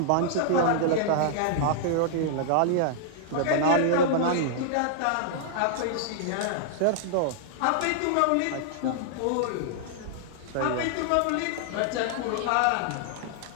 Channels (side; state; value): both; different; correlation -0.01